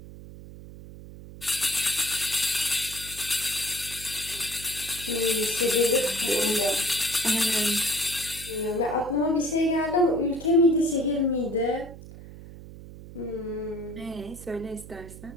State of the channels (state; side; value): noise; right; hum, 15 dB below the sound